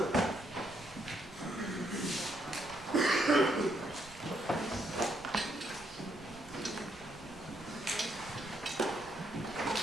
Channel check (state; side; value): noise; right; rumble, 21 dB below the sound